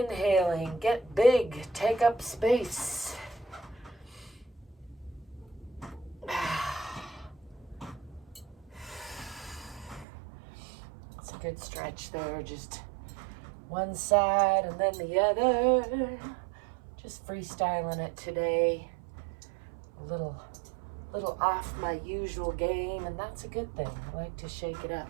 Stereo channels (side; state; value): left; drops out; at 10.1 s